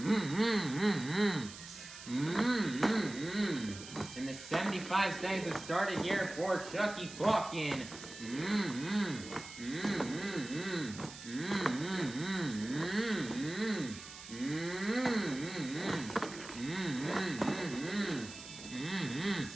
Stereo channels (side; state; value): right; noise; hiss, 14 dB below the sound